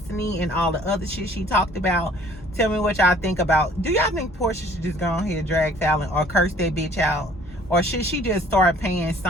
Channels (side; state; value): both; normal; correlation 0.55